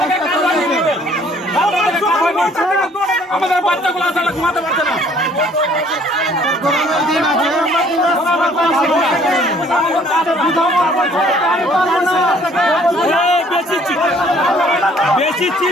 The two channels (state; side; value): normal; both; correlation 0.58